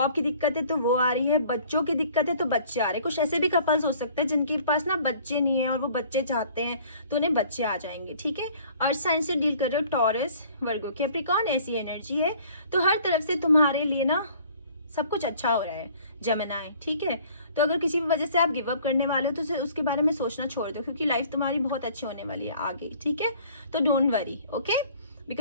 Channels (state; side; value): inverted; both; correlation -0.53